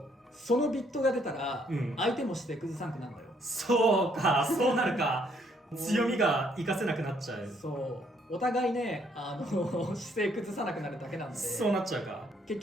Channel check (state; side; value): normal; both; correlation 0.69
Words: そのビットが出たら相手もして崩さんくなるのよ。そうか、そうなるか。強みが活かせなくなっちゃう。そうお互いね、姿勢崩さなくなるだけなんで、そうなっちゃうか。結